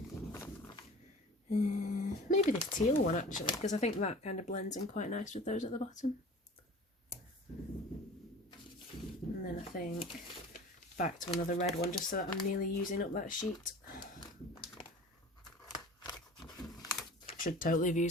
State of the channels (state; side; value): normal; both; correlation 0.42